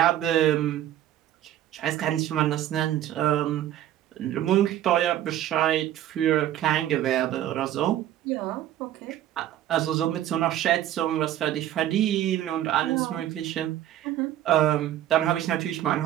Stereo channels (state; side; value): quieter; left; 12.3 dB